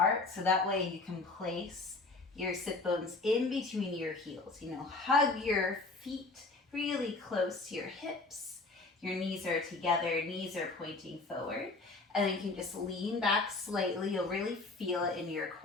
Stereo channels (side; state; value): right; quieter; 3.5 dB